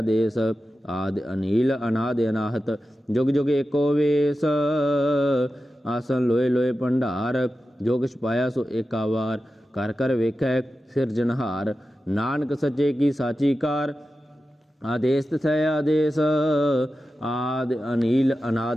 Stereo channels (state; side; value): normal; both; correlation 0.92